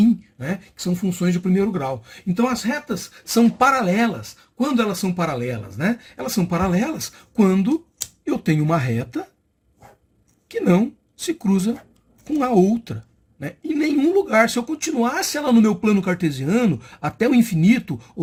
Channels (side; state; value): both; identical; correlation 1.00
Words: né, que são funções de primeiro grau. Então as retas são paralelas. Quando elas são paralelas? Né? Elas são paralelas quando eu tenho uma reta que não se cruza com a outra. Né? Em nenhum lugar, se eu continuasse ela no meu plano cartesiano, até o infinito